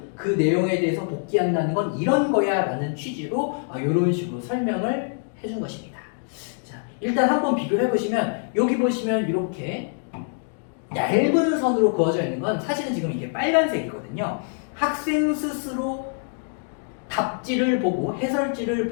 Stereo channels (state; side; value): silent; right; 62 dB below the other